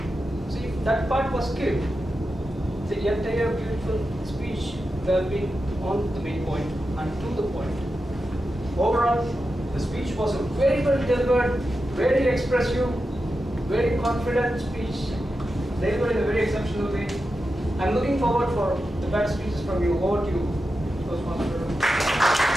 So if that part was skipped, the entire beautiful speech would have been on the main point and to the point. Overall, the speech was a very well delivered, very expressive, very confident speech, delivered in a very exceptional way. I'm looking forward for the better speeches from you. Over to you, Toastmaster.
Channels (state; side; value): normal; both; correlation 0.90